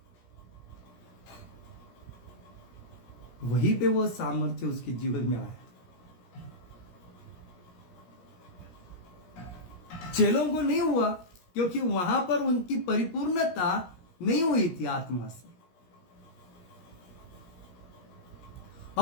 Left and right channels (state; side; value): late; right; 17 ms